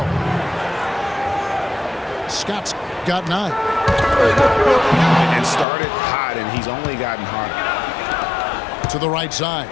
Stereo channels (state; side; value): drops out; right; at 5.7 s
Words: Scott's got 9. And started hot, and he's only gotten hotter. To the right side.